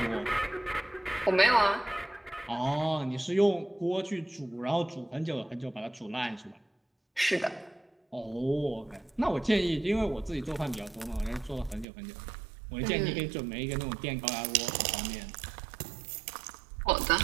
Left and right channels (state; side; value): drops out; left; at 11.9 s